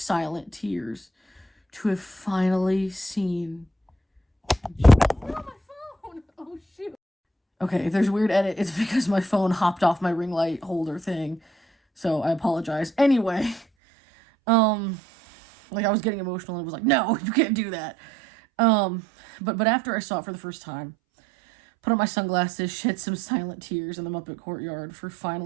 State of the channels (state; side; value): drops out; left; at 13.7 s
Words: tears to have finally seen. Oh, my phone! Oh, shoot. Okay, if there's a weird edit, it's because my phone hopped off my ring light holder thing. So I apologize. Anyway, I was getting emotional and it was no, you can't do that. But after I saw it for the first time, put on my sunglasses, shed some silent tears in the Muppet courtyard for